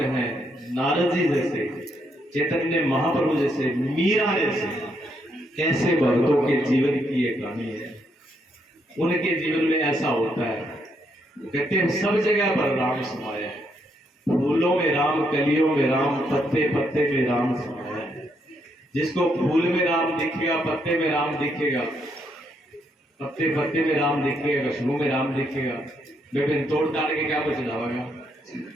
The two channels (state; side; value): normal; both; correlation 0.76